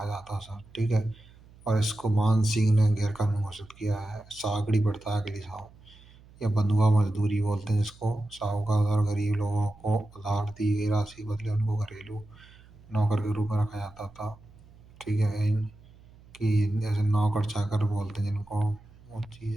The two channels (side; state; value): right; noise; hum, 24 dB below the sound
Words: जाता था। ठीक है। और इसको मान सिंह ने गैर कानूनी घोषित किया है। सागड़ी प्रथा के लिए या बंधुआ मजदूरी बोलते हैं जिसको साहूकार और गरीब लोगों को उधार दी गई राशि के बदले उनको घरेलू नौकर के रूप में रखा जाता था। ठीक है। कि जैसे नौकर चाकर बोलते हैं जिनको वो चीज़